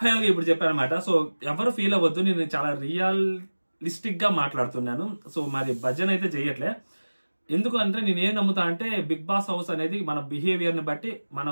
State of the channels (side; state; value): both; inverted; correlation -1.00